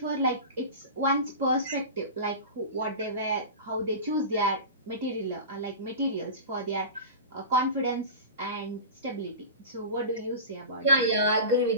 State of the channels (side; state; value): both; inverted; correlation -0.30